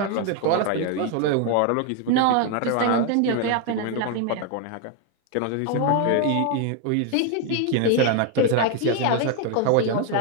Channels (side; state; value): both; different; correlation 0.00